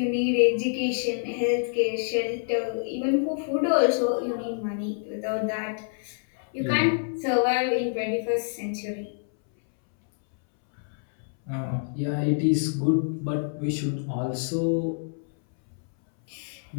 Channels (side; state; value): right; silent; 60 dB below the other